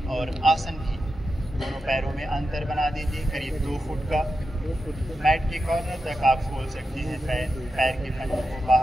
और आसन भी। दोनों पैरों में अंतर बना दीजिए करीब 2 फुट का। मैट के कॉर्नर तक आप खोल सकते हैं। पैर के पंजों को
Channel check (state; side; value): normal; both; correlation 0.89